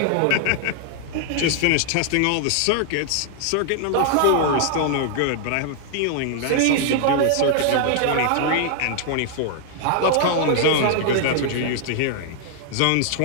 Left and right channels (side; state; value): both; different; correlation 0.00